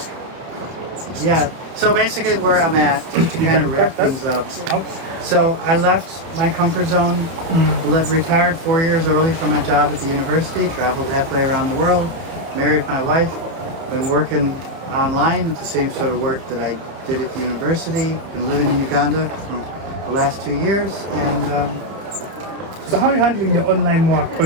Yeah. So basically, where I'm at, just to kind of wrap things up. So I left my comfort zone, retired 4 years early from my job at the university, traveled halfway around the world, married my wife, been working online. It's the same sort of work that I did at the university. Been living in Uganda for the last 2 years, and so how are you handling the online work?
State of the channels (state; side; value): late; left; 30 ms